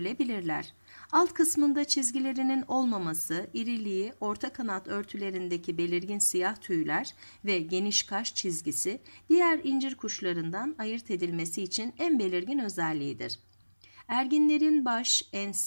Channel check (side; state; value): both; inverted; correlation -1.00